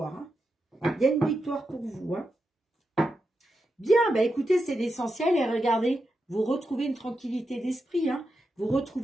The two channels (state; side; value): normal; both; correlation 0.87